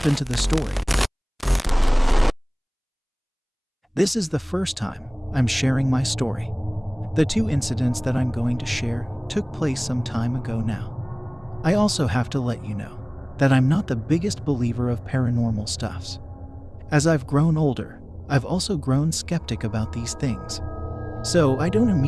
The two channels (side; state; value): both; identical; correlation 1.00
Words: into the story. This is the first time I'm sharing my story. The two incidents that I'm going to share took place some time ago now. I also have to let you know that I'm not the biggest believer of paranormal stuffs. As I've grown older, I've also grown skeptic about these things. So I don't